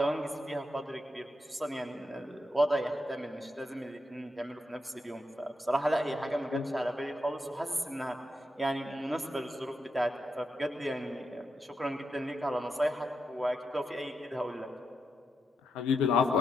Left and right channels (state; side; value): normal; both; correlation 0.84